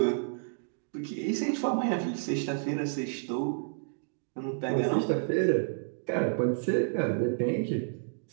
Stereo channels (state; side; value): silent; left; digital silence